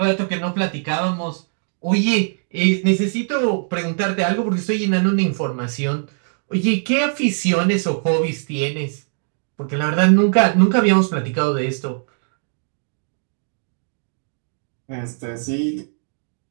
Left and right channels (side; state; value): left; silent; digital silence